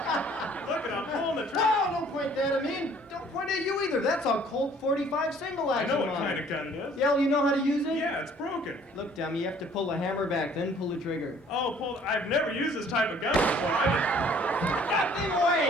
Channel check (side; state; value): both; normal; correlation 0.56